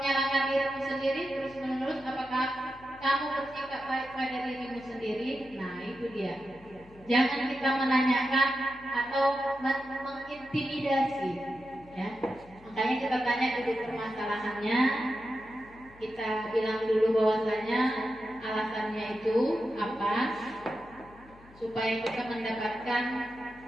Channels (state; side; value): noise; left; hum, 24 dB below the sound